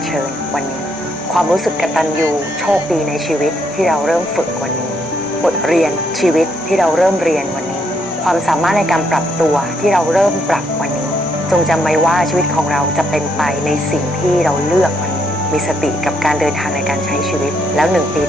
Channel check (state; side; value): normal; both; correlation 0.74